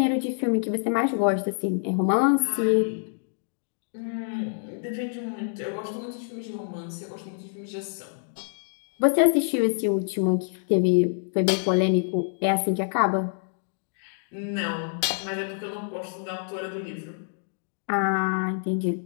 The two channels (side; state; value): right; silent; digital silence